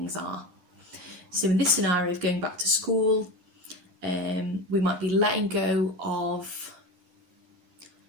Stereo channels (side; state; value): left; late; 10 ms